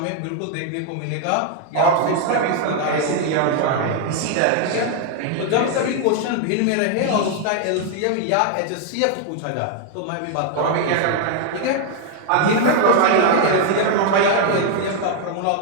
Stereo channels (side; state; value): both; different; correlation 0.00